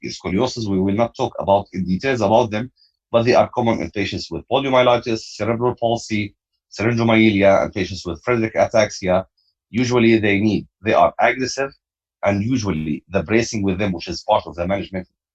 scoliosis, we will not talk about in details about them, but they are common in patients with poliomyelitis, cerebral palsy, syringomyelia, and patients with Friedreich ataxia. Usually they are aggressive, and usually the bracing with them, which is part of the management,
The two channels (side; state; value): both; identical; correlation 1.00